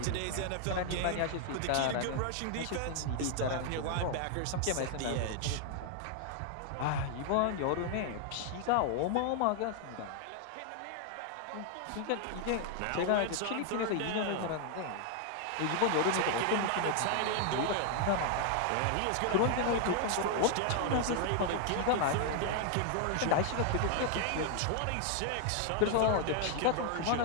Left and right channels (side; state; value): both; different; correlation 0.00